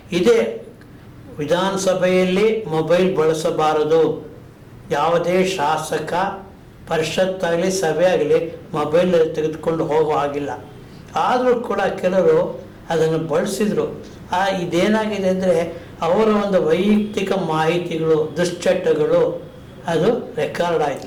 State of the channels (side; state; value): both; identical; correlation 1.00